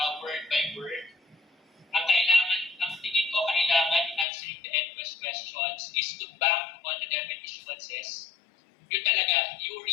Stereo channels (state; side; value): drops out; right; at 4.2 s